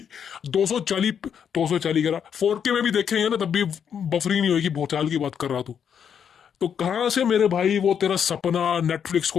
240 करा 4K में भी देखेंगे ना तब भी बफरिंग नहीं होगी। भूचाल की बात कर रहा तू, तो कहां से मेरे भाई वो तेरा सपना नेटफ्लिक्स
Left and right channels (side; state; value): right; quieter; 7.9 dB